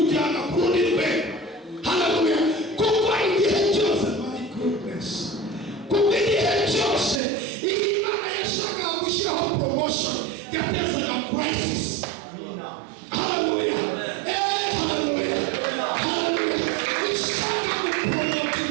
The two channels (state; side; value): drops out; left; at 7.2 s